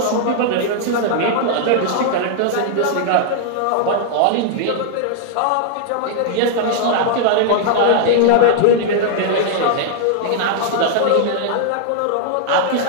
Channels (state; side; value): different; both; correlation -0.01